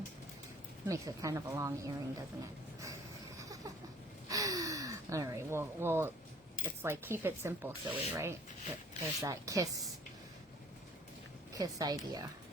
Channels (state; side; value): normal; both; correlation 0.54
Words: Makes it kind of a long earring, doesn't it? All right. Well, it's like keep it simple, silly, right? There's that kiss idea.